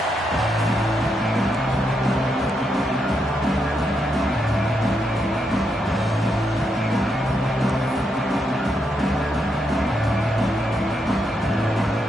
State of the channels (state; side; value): normal; both; correlation 0.81